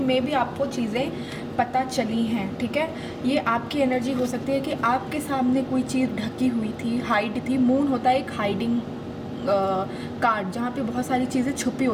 मे बी आपको चीज़ें पता चली हैं. ठीक है, ये आपकी एनर्जी हो सकती है कि आपके सामने कोई चीज़ ढकी हुई थी, हाइड थी. मून होता है एक हाइडिंग कार्ड जहाँ पे बहुत सारी चीज़ें छुपी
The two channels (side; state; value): both; identical; correlation 1.00